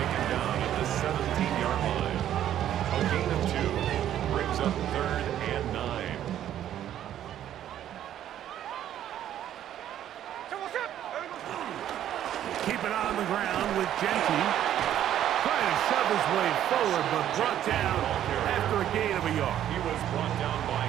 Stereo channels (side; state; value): left; quieter; 11.2 dB